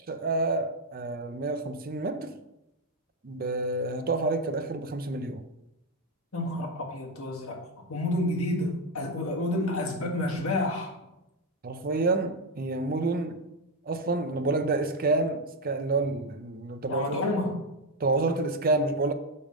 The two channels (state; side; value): normal; both; correlation 0.07